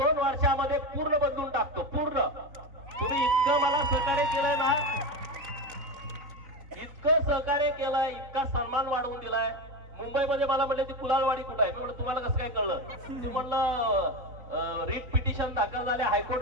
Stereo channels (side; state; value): left; late; 3.9 ms